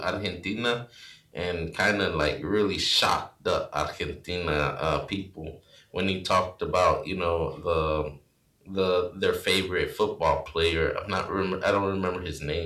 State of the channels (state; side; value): identical; both; correlation 1.00